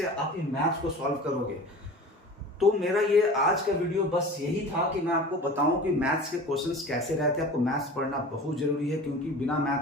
आप ये मैथ्स को सॉल्व करोगे। तो मेरा ये आज का वीडियो बस यही था कि मैं आपको बताऊं कि मैथ्स के क्वेश्चंस कैसे रहते हैं। आपको मैथ्स पढ़ना बहुत जरूरी है, क्योंकि बिना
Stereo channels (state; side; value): normal; both; correlation 0.38